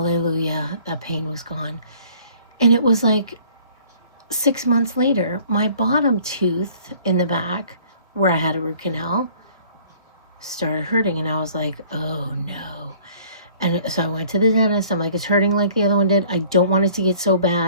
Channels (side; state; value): both; inverted; correlation -0.54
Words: that pain was gone. And it was like 6 months later, my bottom tooth in the back where I had a root canal started hurting. And I was like, oh no. And so I went to the dentist. I'm like, it's hurting like the other one did. I don't want it to get so